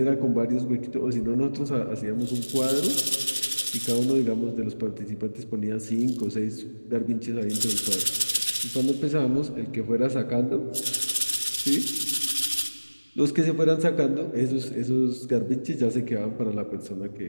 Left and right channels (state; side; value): inverted; both; correlation -1.00